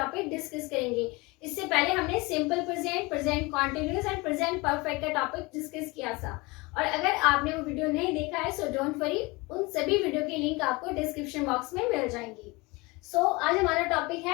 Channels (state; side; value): quieter; right; 24.6 dB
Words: डिस्कस करेंगे. इससे पहले हमने simple present, present continuous and present perfect का टॉपिक डिस्कस किया था. और अगर आपने वो वीडियो नहीं देखा है सो डोंट वरी, उन सभी वीडियो की लिंक आपको डिस्क्रिप्शन बॉक्स में मिल जाएंगी. सो आज हमारा टॉपिक